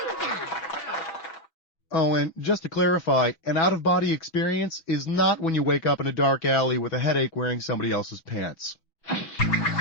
Oh, and just to clarify, an out-of-body experience is not when you wake up in a dark alley with a headache wearing somebody else's pants.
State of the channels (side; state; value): right; late; 6.1 ms